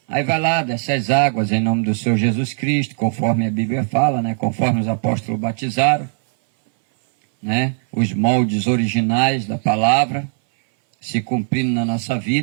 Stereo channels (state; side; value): silent; left; 61 dB below the other